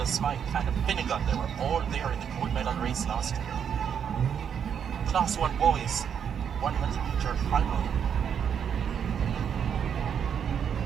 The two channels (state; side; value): quieter; left; 7.9 dB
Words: Smythe, and Finnegan. They were all there in the gold medal race last year. Class 1 boys, 100-meter final.